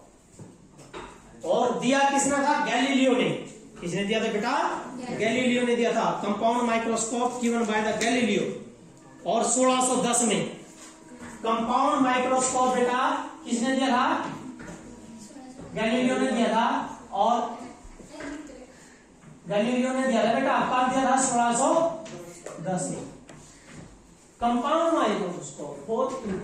और दिया किसने था? गैलीलियो ने। किसने दिया था बेटा? गैलीलियो ने दिया था। Compound microscope given by the Galileo, और 1610 में। कंपाउंड माइक्रोस्कोप बेटा किसने दिया था? गैलीलियो ने दिया था, और गैलीलियो ने दिया था बेटा, कब दिया था? 1610 में। कंपाउंड माइक्रोस्कोप बहुत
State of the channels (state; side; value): identical; both; correlation 1.00